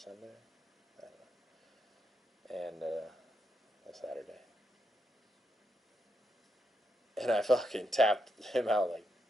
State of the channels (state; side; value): normal; both; correlation 0.81